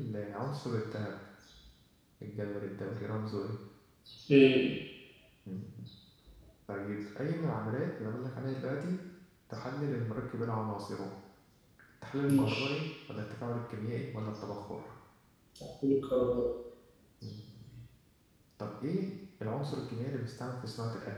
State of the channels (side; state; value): both; identical; correlation 1.00